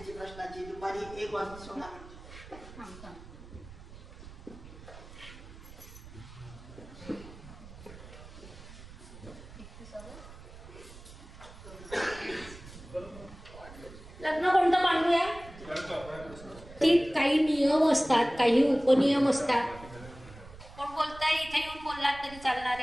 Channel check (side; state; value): right; noise; rumble, 17 dB below the sound